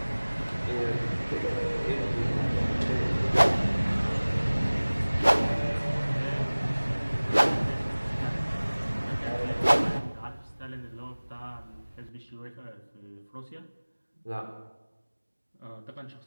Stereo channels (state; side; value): inverted; both; correlation -1.00